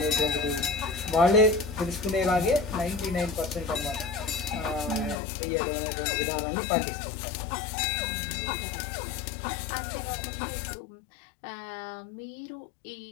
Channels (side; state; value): right; drops out; at 5.2 s